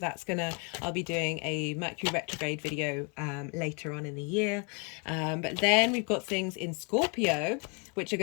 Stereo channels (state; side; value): quieter; right; 33.1 dB